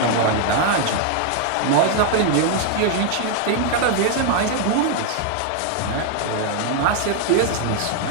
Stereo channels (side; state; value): both; different; correlation 0.00